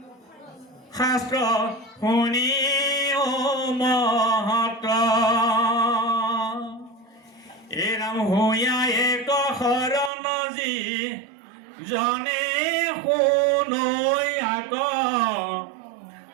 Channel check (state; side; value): drops out; left; at 10.1 s